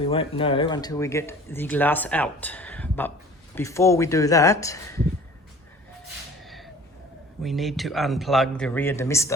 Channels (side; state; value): both; normal; correlation 0.46